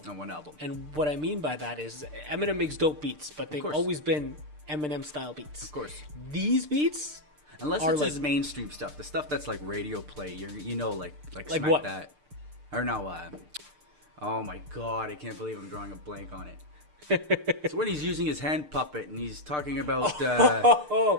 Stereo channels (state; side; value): late; left; 6.7 ms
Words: On one album. And what I mean by that is Eminem makes dope beats, but they've always been Eminem style beats. Of course. These beats, unless it's his mainstream stuff, the stuff that's like radio play, like Smack what? That, or no, oh my god, I can't believe I'm drawing a blank on it. It's when he's using his hand puppet and he's talking about.